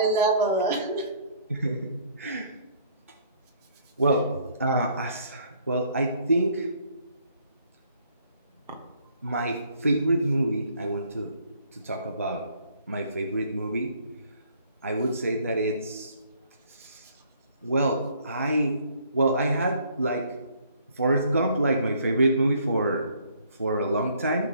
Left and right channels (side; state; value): both; inverted; correlation -0.61